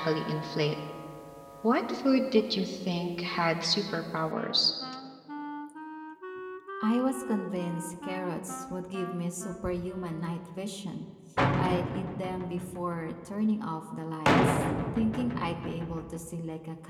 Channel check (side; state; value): both; identical; correlation 1.00